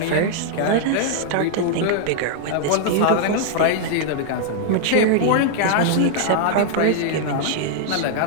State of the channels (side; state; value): both; different; correlation -0.01